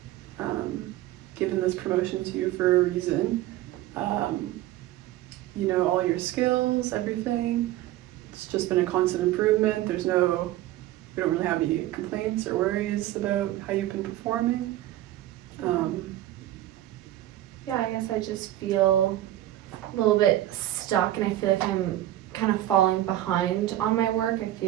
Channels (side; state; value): left; quieter; 14.4 dB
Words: given this promotion to you for a reason. All your skills, everything. It's just been a constant improvement. We don't really have any complaints or worries about how you've been performing. Yeah, I guess I just feel a little bit stuck, and I feel like I'm kind of falling behind on my work.